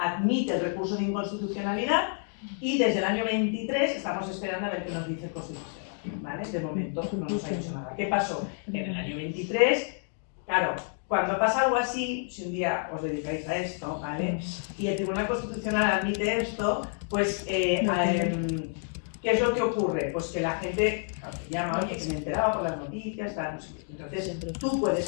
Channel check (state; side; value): silent; right; 58 dB below the other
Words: el recurso de inconstitucionalidad y desde el año 23 estamos esperando a ver qué nos dice el Constitucional, ¿vale? De momento no nos ha dicho nada. ¿Qué pasó? En el año 23, claro, cuando pasa algo así, si un día os dedicáis a esto, ¿vale? Y el Tribunal Constitucional admite esto, pues, ¿qué es lo que ocurre? Pues que la gente llama, oye, que me enteraba por las noticias, tal, no sé qué. Entonces, tú